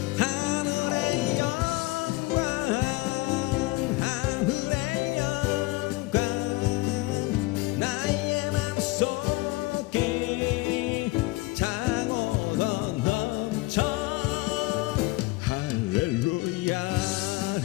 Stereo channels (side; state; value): right; quieter; 21.4 dB